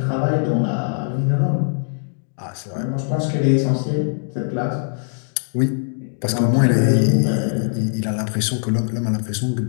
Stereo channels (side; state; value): right; silent; digital silence